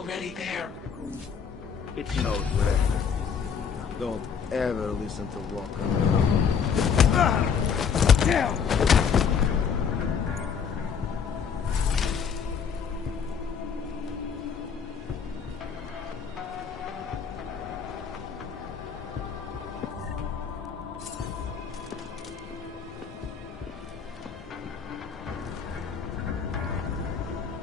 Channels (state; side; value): quieter; right; 6.7 dB